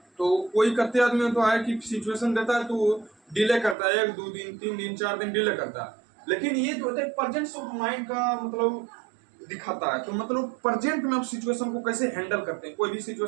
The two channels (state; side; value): drops out; left; at 3.8 s